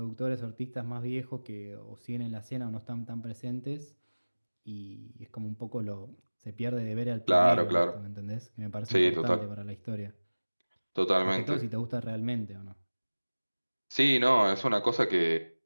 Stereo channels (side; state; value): both; inverted; correlation -1.00